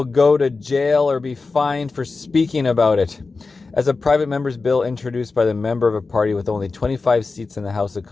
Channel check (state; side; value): quieter; right; 4.0 dB